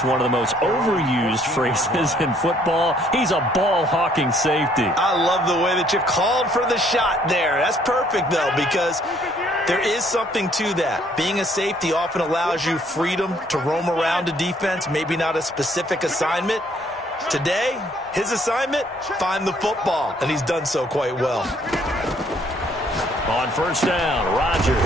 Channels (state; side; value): normal; both; correlation 0.64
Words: one of the most overused phrases in football. He's a ball-hawking safety. I love the way that you called for the shot there. That's perfect, though, because there is something to that. Being a safety often allows you freedom to roam around a defense, maybe not a specific assignment. Today, his assignment, find the football, and he's done so quite well. On 1st down,